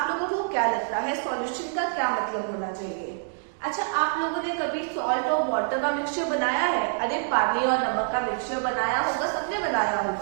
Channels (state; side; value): silent; left; digital silence